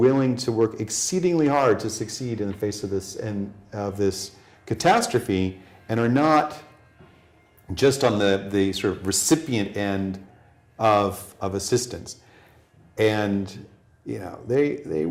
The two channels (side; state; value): both; identical; correlation 1.00